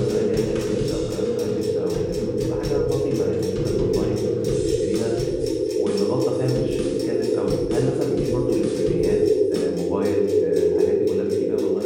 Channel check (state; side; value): identical; both; correlation 1.00